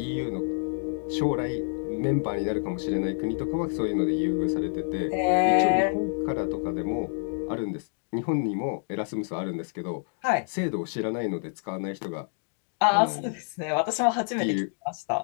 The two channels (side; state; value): right; silent; digital silence